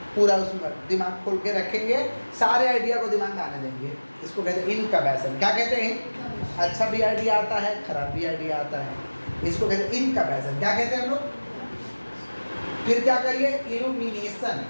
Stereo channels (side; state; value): both; inverted; correlation -1.00